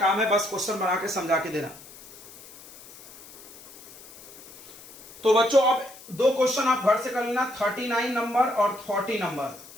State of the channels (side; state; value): left; noise; hiss, 19 dB below the sound